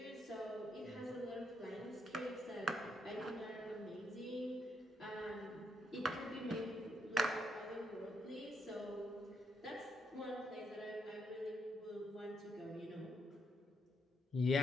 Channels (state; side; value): normal; both; correlation 0.77